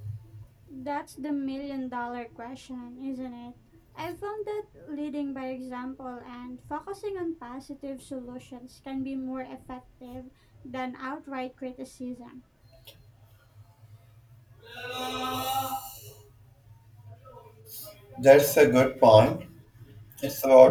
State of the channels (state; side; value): identical; both; correlation 1.00